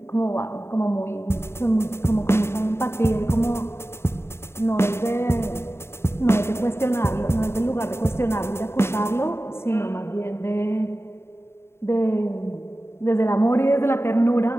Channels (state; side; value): late; right; 0.12 ms